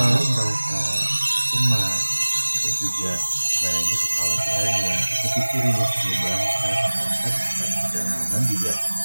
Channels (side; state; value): both; inverted; correlation -1.00